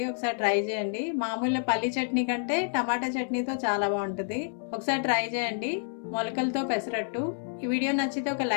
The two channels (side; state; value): right; silent; 59 dB below the other